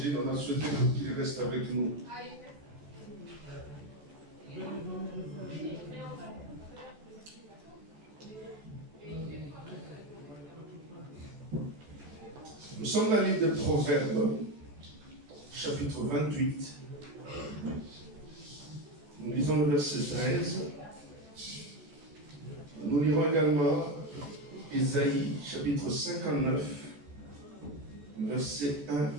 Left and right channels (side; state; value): left; late; 14 ms